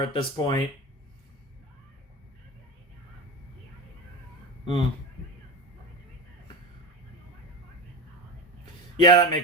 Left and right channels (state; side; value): normal; both; correlation 0.24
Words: at this point. Yeah, that